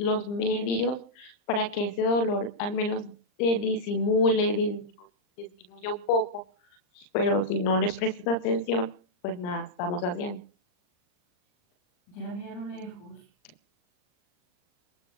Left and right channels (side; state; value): right; late; 39 ms